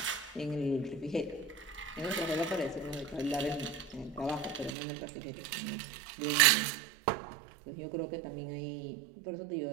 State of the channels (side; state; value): left; drops out; at 4.8 s